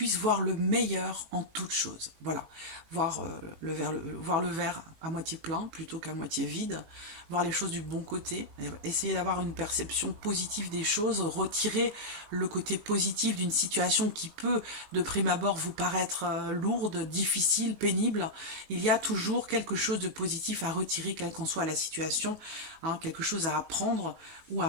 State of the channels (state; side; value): late; left; 18 ms